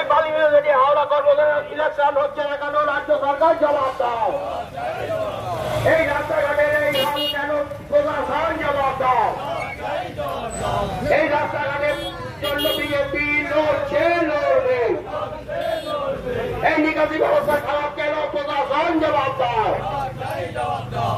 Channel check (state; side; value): identical; both; correlation 1.00